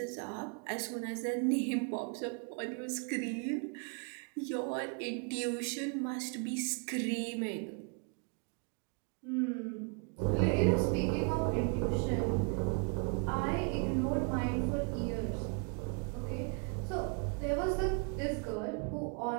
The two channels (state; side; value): quieter; left; 36.9 dB